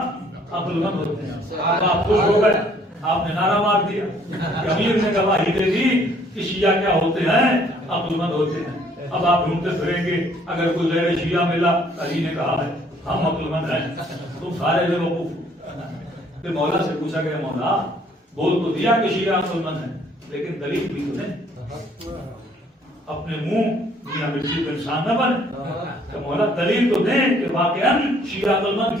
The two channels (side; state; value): both; normal; correlation 0.62